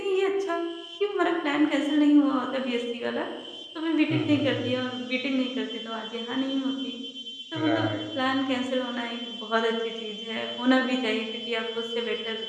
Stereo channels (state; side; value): identical; both; correlation 1.00